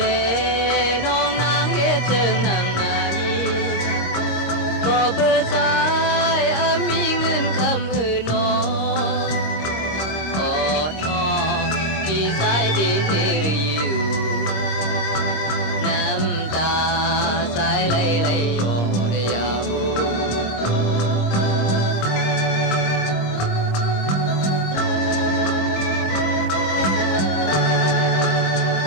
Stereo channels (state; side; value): late; right; 26 ms